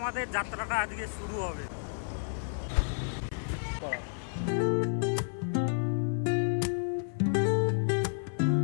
যাত্রাটা আজকে শুরু হবে।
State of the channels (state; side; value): silent; right; 55 dB below the other